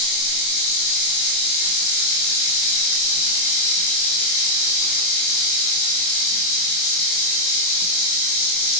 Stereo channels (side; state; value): right; late; 23 ms